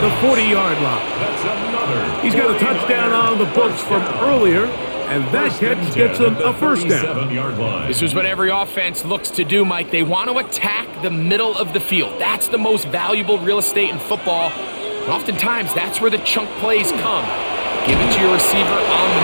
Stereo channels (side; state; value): both; inverted; correlation -1.00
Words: the 40-yard line. He's got a touchdown on the books from earlier, and that catch gets him a first down. This is what every offense looks to do, Mike. They want to attack the middle of the field. That's the most valuable real estate in football. And oftentimes, that's where the chunk plays come. Give it to your receiver on the